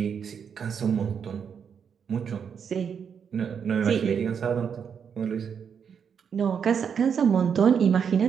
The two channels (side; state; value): left; quieter; 7.1 dB